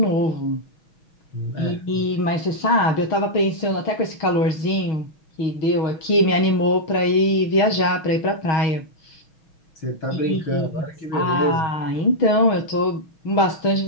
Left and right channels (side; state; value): right; late; 6.3 ms